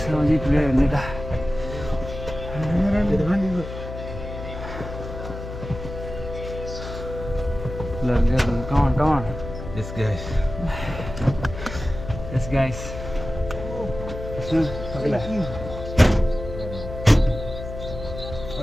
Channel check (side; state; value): left; noise; hum, 9 dB below the sound